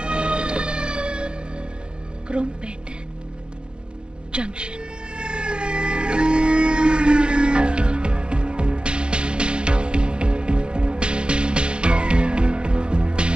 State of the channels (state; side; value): late; left; 0.051 ms